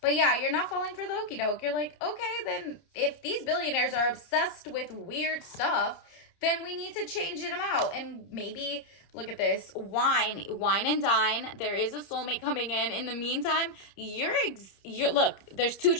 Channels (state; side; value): late; right; 30 ms